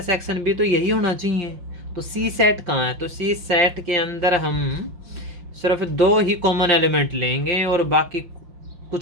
भी तो यही होना चाहिए। तो सी सेट कहाँ है, तो सी सेट के अंदर हम सिर्फ 2 ही कॉमन एलिमेंट लेंगे और बाकी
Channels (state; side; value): late; left; 5.7 ms